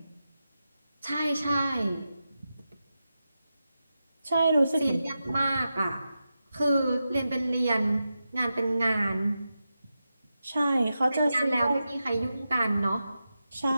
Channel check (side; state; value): both; inverted; correlation -0.90